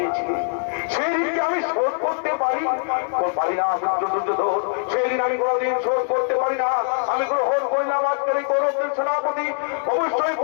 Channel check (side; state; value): right; silent; digital silence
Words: সেই দিনকে আমি শোধ করতে পারি না মিত্র দুর্যোধন, সেই দিন আমি কোনোদিন শোধ করতে পারি না। আমি গ্রহণ করলাম আজকের এই কৌরবদের সেনাপতি, অবশ্যই